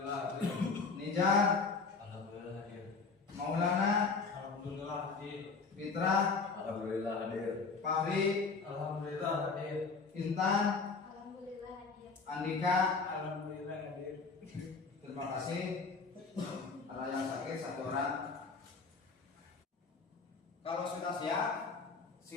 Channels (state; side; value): quieter; right; 4.5 dB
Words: hadir. Nijar. Alhamdulillah hadir. Maulana. Alhamdulillah hadir. Fitra. Alhamdulillah hadir. Fahri. Alhamdulillah hadir. Intan. Alhamdulillah hadir. Andika. Alhamdulillah hadir. Terima kasih. Ada yang sakit satu orang. Kalau sudah siap,